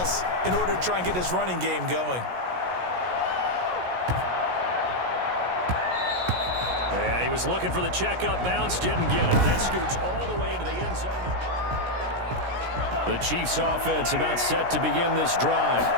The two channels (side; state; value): left; late; 16 ms